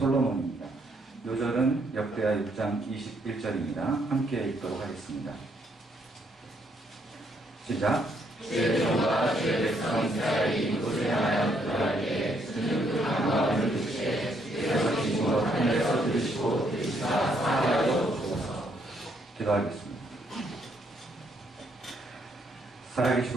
요절은 역대하 6장 21절입니다. 함께 읽도록 하겠습니다. 시작. 죄종과 죄백성 이스라엘이 이곳을 향하여 기도하기에 주는 그 간구함을 듣시되 주께서 기신 것 하늘에서 들으시고 들으시사 사하여 주옵소서. 기도하겠습니다.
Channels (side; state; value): both; normal; correlation 0.72